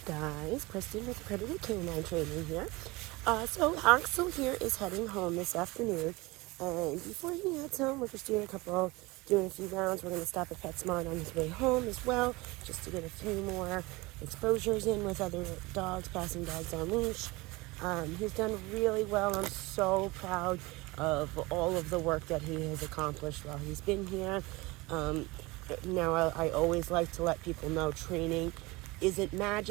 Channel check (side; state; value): left; quieter; 23.0 dB